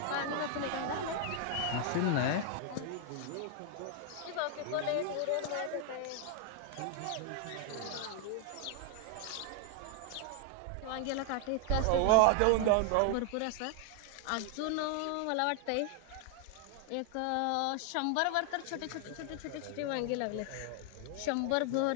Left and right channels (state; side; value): different; both; correlation 0.00